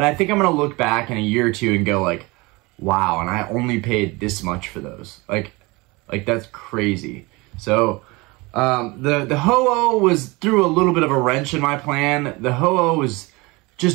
I think I'm going to look back in a year or two and go, like, wow, and I only paid this much for those. Like that's crazy. So, the Ho-Oh threw a little bit of a wrench in my plan. The Ho-Oh was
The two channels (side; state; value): left; quieter; 24.3 dB